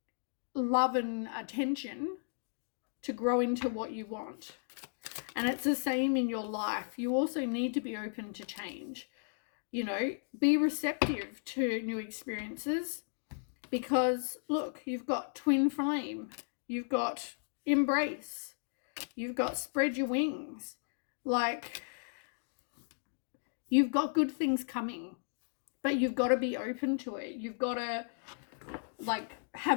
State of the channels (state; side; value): silent; right; digital silence